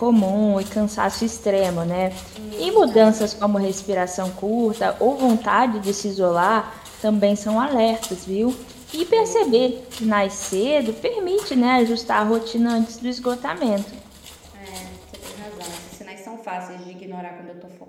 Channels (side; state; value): both; identical; correlation 1.00